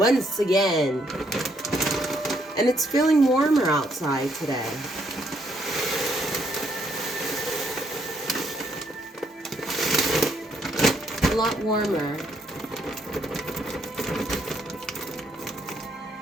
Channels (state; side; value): normal; both; correlation 0.72